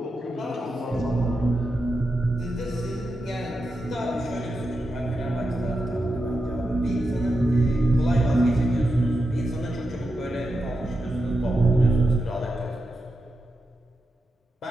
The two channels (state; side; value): normal; both; correlation 0.88